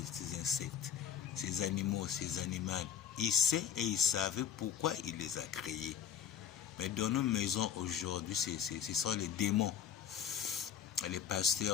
ces insectes, ces animaux, ces animaux, il sait et il savait pourquoi il les a créés. Mais dans nos maisons aujourd'hui, ce sont les démons. Les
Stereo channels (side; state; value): right; quieter; 8.8 dB